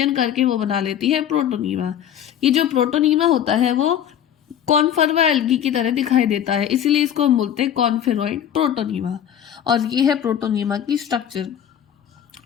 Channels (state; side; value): quieter; right; 9.8 dB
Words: करके वो बना लेती है प्रोटोनीमा। ये जो प्रोटोनीमा होता है वो कॉन्फर्वा एल्गी की तरह दिखाई देता है, इसीलिए इसको हम बोलते हैं कॉन्फेरॉइड प्रोटोनीमा। और ये है प्रोटोनीमा की स्ट्रक्चर।